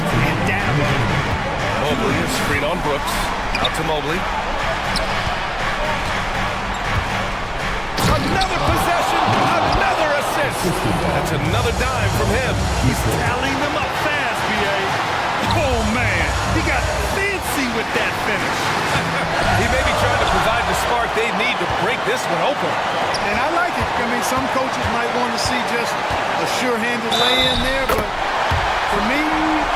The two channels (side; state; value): both; identical; correlation 1.00